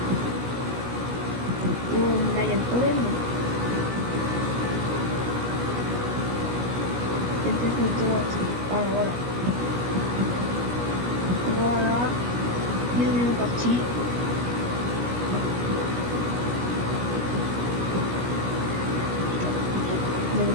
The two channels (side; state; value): left; late; 17 ms